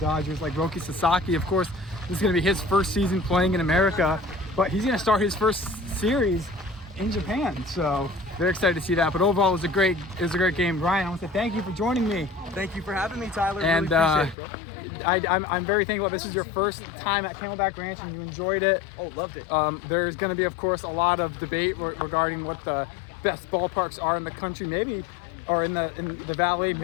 like Roki Sasaki. Of course, this is going to be his first season playing in America, but he's going to start his first series in Japan. So very excited to see that. But overall, it was a great game. Ryan, I want to say thank you for joining me. Thank you for having me, Tyler. And really appreciate it, bro. I'm very thankful. This is your first time at Camelback Ranch and you enjoyed it. Oh, loved it. There's going to be, of course, a lot of debate regarding what the best ballparks are in the country, maybe, or in the valley.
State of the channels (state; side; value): drops out; right; at 14.4 s